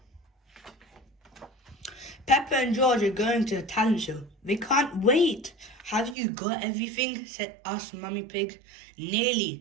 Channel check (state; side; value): drops out; left; at 6.2 s